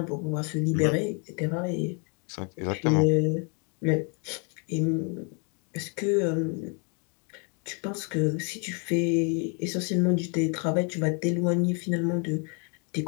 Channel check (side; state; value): right; quieter; 37.7 dB